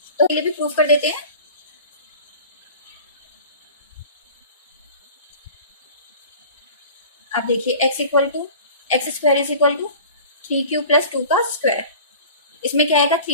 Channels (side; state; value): both; inverted; correlation -0.41